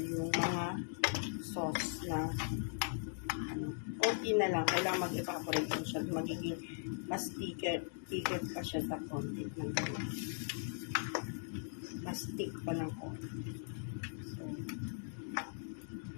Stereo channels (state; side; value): silent; right; digital silence